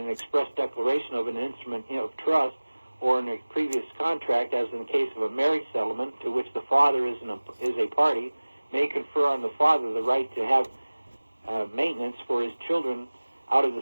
express declaration of an instrument of trust, or in a previous contract, as in the case of a marriage settlement to which the father is a party, may confer on the father the right to have maintenance for his children out of the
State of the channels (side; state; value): both; inverted; correlation -1.00